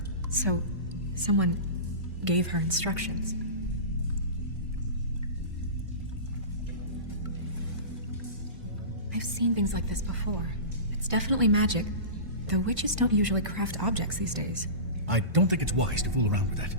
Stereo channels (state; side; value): late; left; 1.5 ms